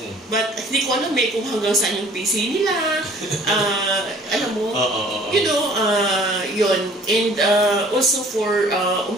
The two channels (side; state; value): both; normal; correlation 0.53